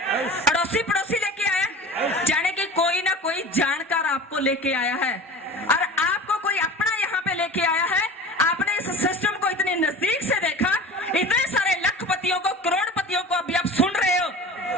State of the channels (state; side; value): normal; both; correlation 0.37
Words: लेके आया है और आपको कोई अपना यहाँ पे लेके आया है। आपने इस सिस्टम को इतनी नजदीक से देखा, इतने सारे लखपतियों को, करोड़पतियों को अभी आप सुन रहे हो।